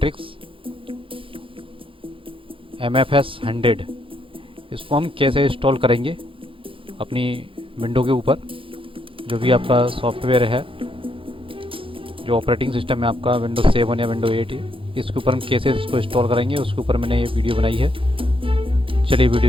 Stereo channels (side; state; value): left; late; 0.25 ms